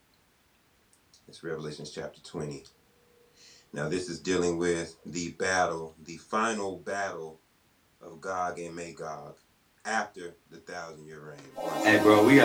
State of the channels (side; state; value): both; identical; correlation 1.00